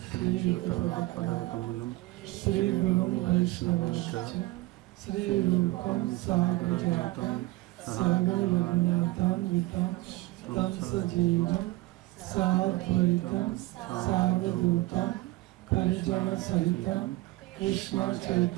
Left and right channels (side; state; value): left; quieter; 19.3 dB